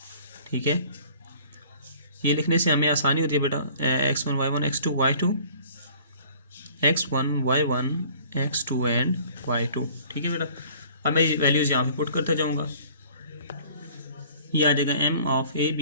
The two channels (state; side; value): inverted; both; correlation -0.51